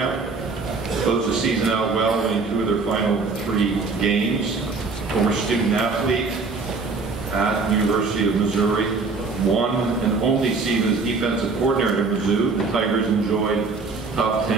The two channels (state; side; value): quieter; left; 4.2 dB